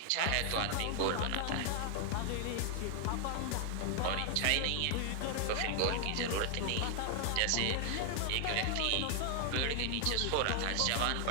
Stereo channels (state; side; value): different; both; correlation 0.00